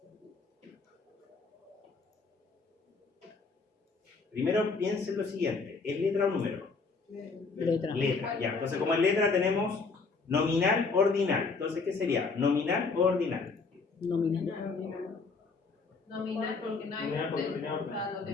Primero piensen lo siguiente, ¿es letra o número? Letra. Letra, ya. Entonces como en letra tenemos nominal, ordinal. Entonces, ¿qué sería? ¿Nominal o ordinal? Nominal. Nominal porque no hay Nominal porque orden. no hay orden. O sea, no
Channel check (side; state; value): right; quieter; 4.4 dB